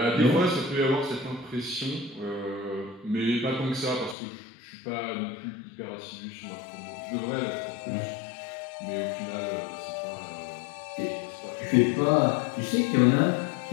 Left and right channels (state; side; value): drops out; right; at 4.2 s